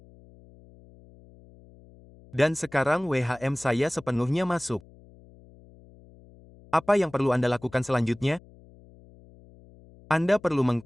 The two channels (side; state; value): left; noise; hum, 24 dB below the sound